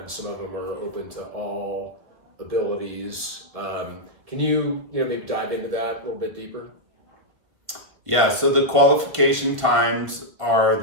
Some of them are open to all abilities. Can you maybe dive into that a little bit deeper? Yeah, so the qualification times are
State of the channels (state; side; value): late; left; 1.3 ms